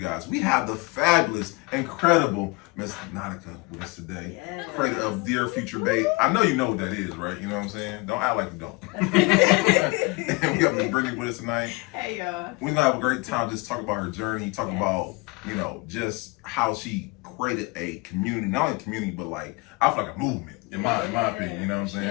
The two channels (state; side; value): quieter; right; 25.7 dB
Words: We have the fabulous, incredible Miss Nautica with us today. Yes. Creator of Dear Future Babe. I know you know what that is, right? You know what I'm saying? Don't act like you don't. And we have Miss Brittany with us tonight. Hey, y'all. We're going to have a great time just talk about her journey, talk about, you know, just how she created a community, not only a community, but like, I feel like a movement, in my opinion, you know what I'm saying?